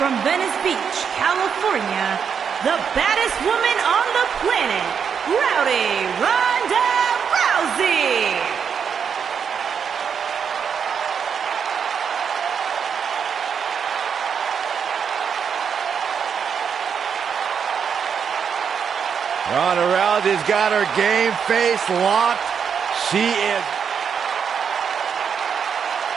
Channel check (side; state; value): left; quieter; 7.0 dB